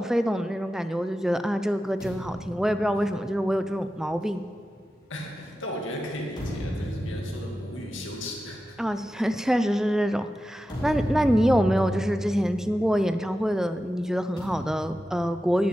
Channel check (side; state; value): both; normal; correlation 0.92